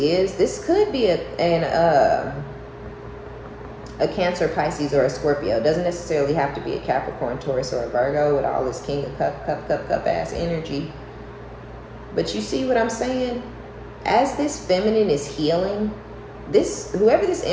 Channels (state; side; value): identical; both; correlation 1.00